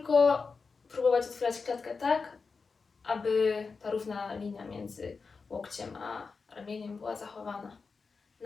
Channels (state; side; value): quieter; right; 4.7 dB